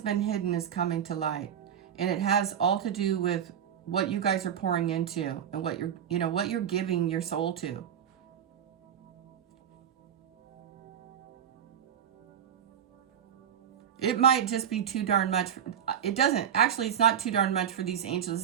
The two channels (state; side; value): quieter; left; 9.0 dB